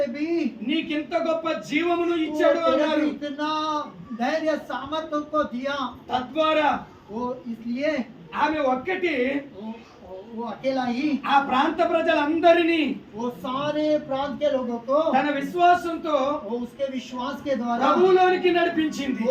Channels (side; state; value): both; identical; correlation 1.00